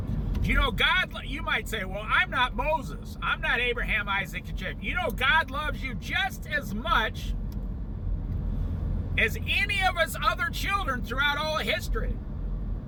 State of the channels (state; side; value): identical; both; correlation 1.00